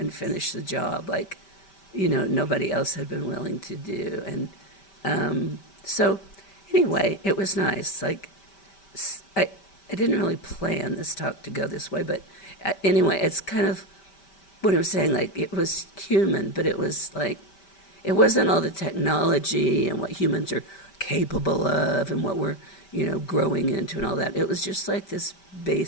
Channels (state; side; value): late; right; 5.1 ms